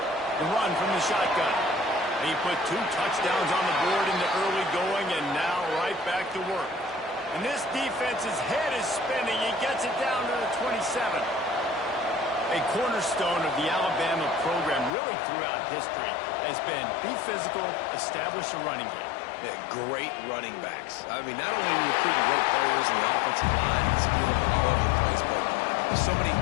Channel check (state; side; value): drops out; right; at 14.9 s